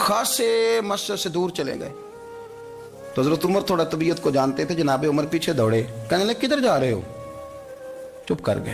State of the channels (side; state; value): both; identical; correlation 1.00